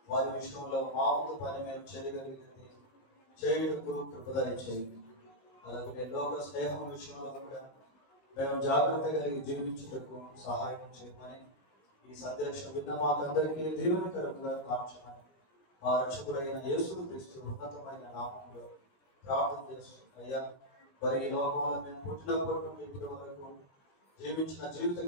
వారి విషయంలో మా వంతు పని మేము చేయగలిగింది చేయుటకు కృపదయ చేయండి. అలాగే లోక స్నేహం విషయంలో కూడా మేము జాగ్రత్త కలిగి జీవించుటకు సహాయం చేయమని ఈ సందేశం విన్న మాకందరికీ దీవెనకరంగా మార్చమని మా రక్షకుడైన యేసుక్రీస్తు ఉన్నతమైన నామములో ప్రార్థన చేస్తున్నాయ్యా. మరి ఈ లోకంలో మేము పుట్టినప్పటి నుండి ఇప్పటి వరకు జీవించిన జీవిత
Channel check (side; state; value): right; late; 19 ms